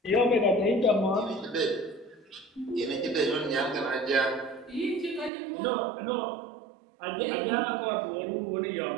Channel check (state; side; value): drops out; left; at 5.3 s